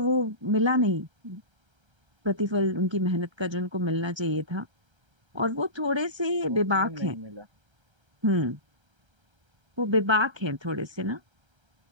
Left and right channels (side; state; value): left; late; 1.3 ms